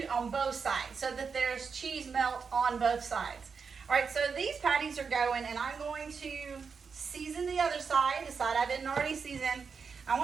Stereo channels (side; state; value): left; quieter; 5.6 dB